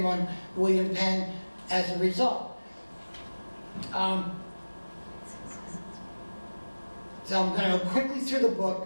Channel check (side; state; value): both; inverted; correlation -1.00